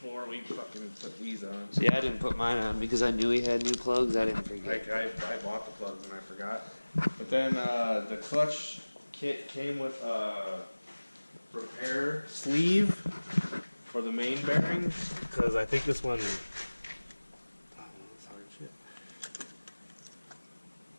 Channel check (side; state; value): both; inverted; correlation -1.00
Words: we fucking put these on. See, I didn't put mine on because I knew he had new plugs. I didn't forget. I bought the plugs and I forgot. But then the clutch kit came with a repair sleeve for the main bearings, because I think this one. Oh, that's hard shit.